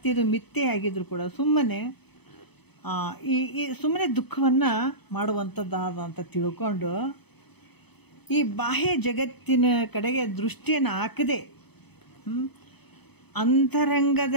ಮಿಥ್ಯೆಯಾಗಿದ್ರು ಕೂಡ ಸುಮ್ಮನೆ ಸುಮ್ಮನೆ ದುಃಖವನ್ನು ಮಾಡುವಂಥದ್ದಾದ ಅಂತ ತಿಳ್ಕೊಂಡು ಈ ಬಾಹ್ಯ ಜಗತ್ತಿನ ಕಡೆಗೆ ದೃಷ್ಟಿಯನ್ನು ಹಾಕದೆ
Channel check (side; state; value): right; late; 0.98 ms